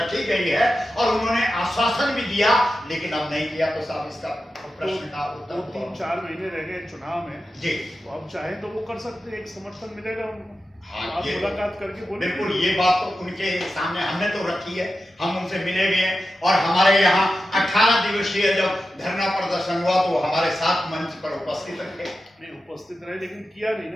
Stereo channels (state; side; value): normal; both; correlation 0.92